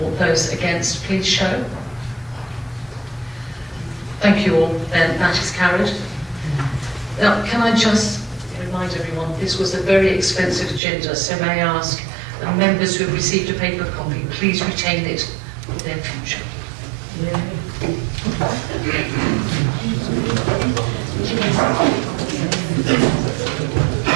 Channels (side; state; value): left; drops out; at 10.8 s